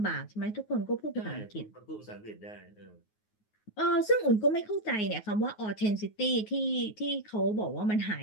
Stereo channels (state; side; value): late; right; 9.4 ms